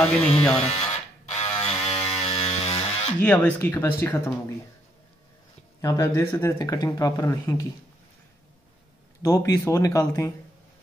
नहीं जा रहा। ये अब इसकी कैपेसिटी ख़त्म होगी। यहाँ पे आप देख सकते हैं कटिंग प्रॉपर नहीं की। 2 पीस और निकालते हैं,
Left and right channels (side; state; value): both; normal; correlation 0.73